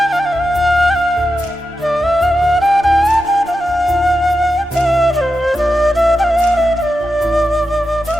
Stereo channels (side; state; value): both; normal; correlation 0.89